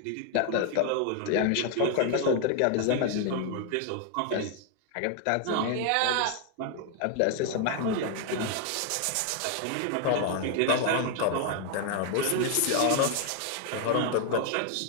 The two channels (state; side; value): different; both; correlation 0.00